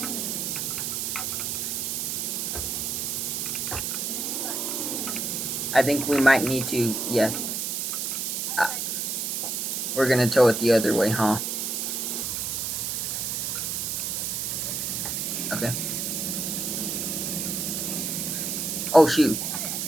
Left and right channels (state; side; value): noise; right; hiss, 1 dB below the sound